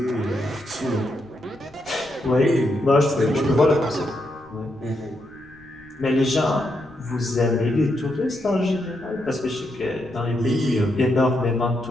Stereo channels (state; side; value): noise; left; rumble, 28 dB below the sound